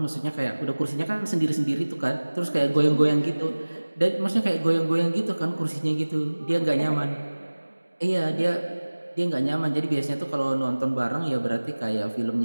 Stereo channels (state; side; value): inverted; both; correlation -1.00